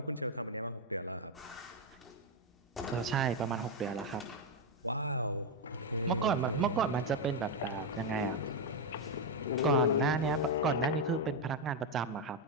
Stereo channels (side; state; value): both; normal; correlation 0.05